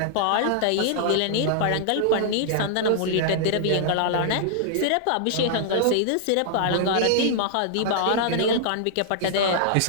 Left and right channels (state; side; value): different; both; correlation -0.01